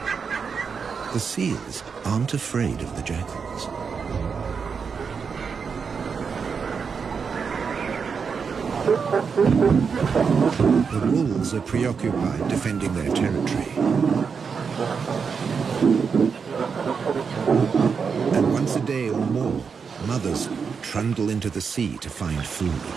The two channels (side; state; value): left; quieter; 5.9 dB